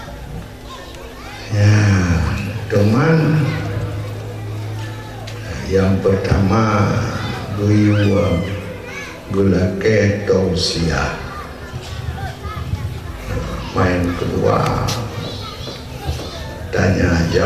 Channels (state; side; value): identical; both; correlation 1.00